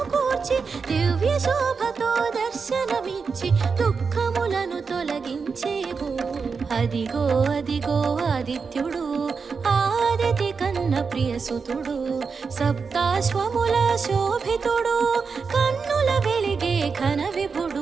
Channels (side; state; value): left; quieter; 5.2 dB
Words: కూర్చి దివ్య శోభతో దర్శనమిచ్చి దుఃఖములను తొలగించేవు అదిగో అదిగో ఆదిత్యుడు ఆదితి కన్న ప్రియసుతుడు సప్తాశ్వముల శోభితుడు కన్నుల వెలిగే ఘన